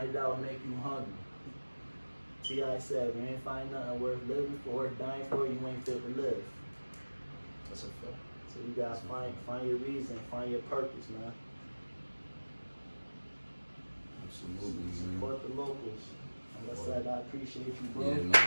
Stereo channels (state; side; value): inverted; both; correlation -1.00